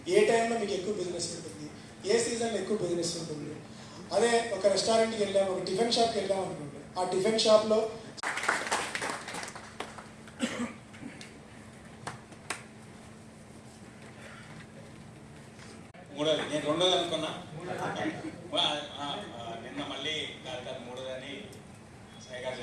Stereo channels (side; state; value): both; identical; correlation 1.00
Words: ఏ టైంలో మీకు ఎక్కువ బిజినెస్ ఉంటుంది, ఏ సీజన్లో ఎక్కువ బిజినెస్ ఉంటుంది. అదే ఒక రెస్టారెంట్కి వెళ్ళాము, ఒక టిఫిన్ షాప్కి వెళ్ళాము అనుకోండి, ఆ టిఫిన్ షాప్లో మూడోది నేను రెండోది అనుకున్నా, నిన్న మళ్ళీ కాదు మూడోదని సాయి గారు